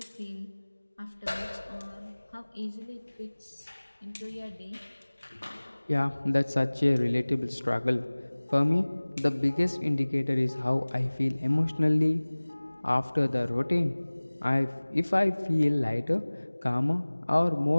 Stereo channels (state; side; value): inverted; both; correlation -1.00